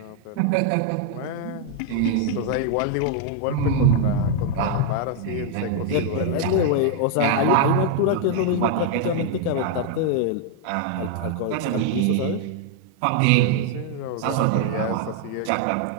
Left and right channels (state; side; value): different; both; correlation 0.00